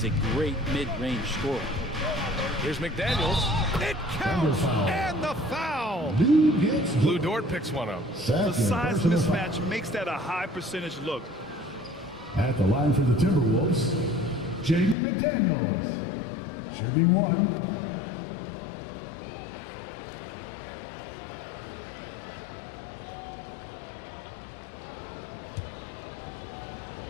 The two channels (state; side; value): drops out; right; at 15.0 s